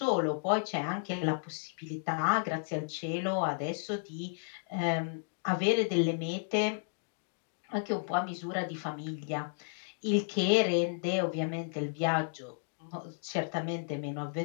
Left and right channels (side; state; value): right; silent; digital silence